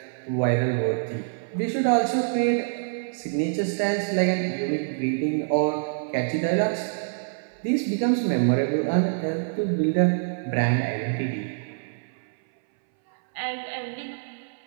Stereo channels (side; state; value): left; silent; 61 dB below the other